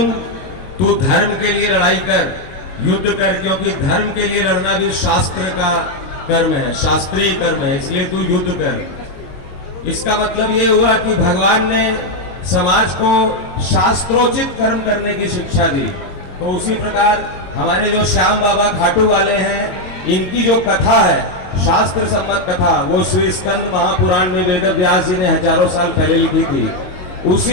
तू धर्म के लिए लड़ाई कर, युद्ध कर, क्योंकि धर्म के लिए लड़ना भी शास्त्र का कर्म है, शास्त्रीय कर्म है, इसलिए तू युद्ध कर। इसका मतलब ये हुआ कि भगवान ने समाज को शास्त्रोचित कर्म करने की शिक्षा दी। तो उसी प्रकार हमारे जो श्याम बाबा खाटू वाले हैं, इनकी जो कथा है, शास्त्र सम्मत कथा, वो श्री स्कंद महापुराण में वेद व्यास जी ने हजारों साल पहले लिखी थी।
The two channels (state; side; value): late; right; 22 ms